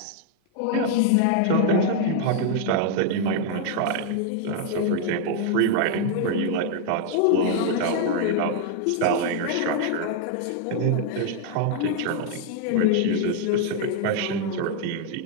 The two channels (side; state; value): both; different; correlation 0.00